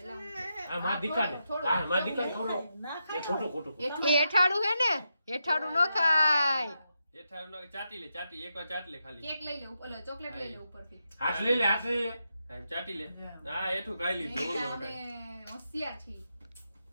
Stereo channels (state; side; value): inverted; both; correlation -0.85